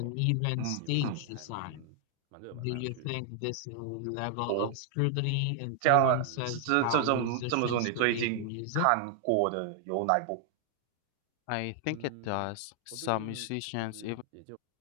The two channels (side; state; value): both; different; correlation 0.00